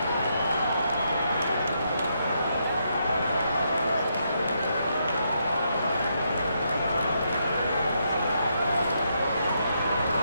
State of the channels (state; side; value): inverted; both; correlation -0.78